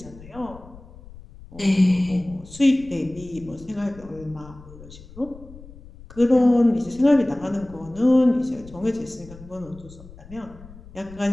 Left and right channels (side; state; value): left; noise; rumble, 19 dB below the sound